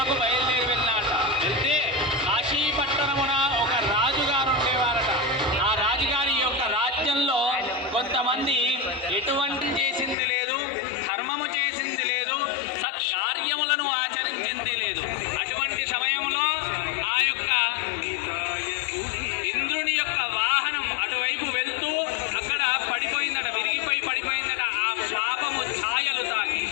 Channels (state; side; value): drops out; right; at 10.2 s